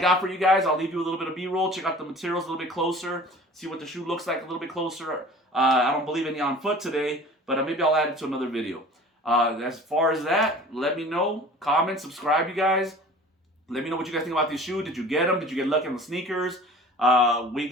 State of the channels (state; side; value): normal; both; correlation 0.44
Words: for you guys. I'll leave you a little bit of B-roll. Check out the materials a little bit closer. See what the shoe looks like a little bit closer. I don't believe any on foot today, but maybe I'll add it to another video. As far as that, let me know. Comment, subscribe, you guys. Let me know what you guys think about these shoes. Did you get them? Did you get lucky on the sneakers? We